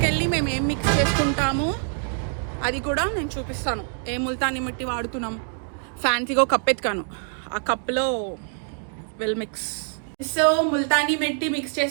మేము ఏం మిక్స్ చేసుకుంటాము అది కూడా నేను చూపిస్తాను. ఏ ముల్తానీ మట్టి వాడుతున్నాం. ఫ్యాన్సీగా ఒక కప్ ఎత్తుకాను, ఆ కప్లో well mix. So Multani mitti mix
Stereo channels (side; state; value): left; silent; 59 dB below the other